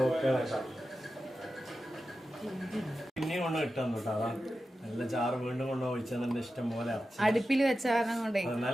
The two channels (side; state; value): both; normal; correlation 0.92